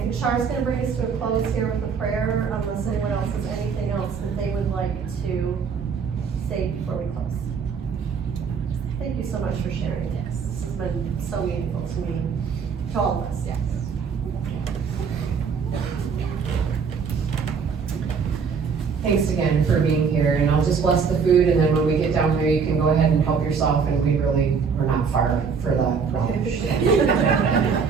Char's going to bring us to a close here with a prayer, unless anyone else has anything else that they would like to say before we close. Thank you so much for sharing this. This has been so meaningful to me, to all of us. Yes. Thanks again for being here, and I'll just bless the food, and then when we get down there, you can go ahead and help yourself, and we're not far for the relish.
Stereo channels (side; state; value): left; quieter; 6.0 dB